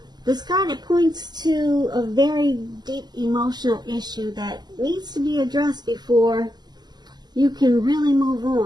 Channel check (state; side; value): late; left; 0.20 ms